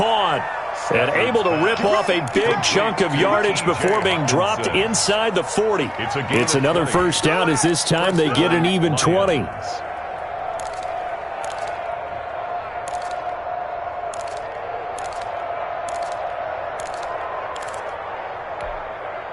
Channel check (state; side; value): identical; both; correlation 1.00